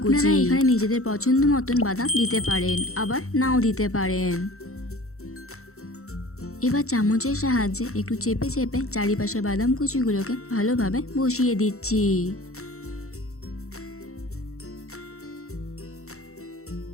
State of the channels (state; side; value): late; right; 0.63 ms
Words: কুচি। আপনারা এখানে নিজেদের পছন্দ মতন বাদাম দিতে পারেন, আবার নাও দিতে পারেন। এবার চামচের সাহায্যে একটু চেপে চেপে চারিপাশে বাদাম কুচিগুলোকে ভালোভাবে বসিয়ে দিচ্ছি।